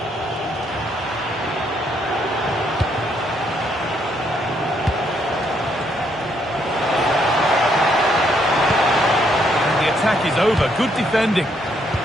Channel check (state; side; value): normal; both; correlation 0.72